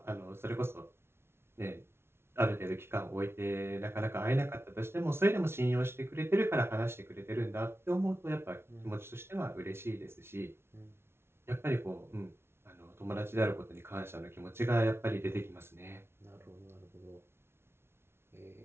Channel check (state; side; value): late; left; 0.12 ms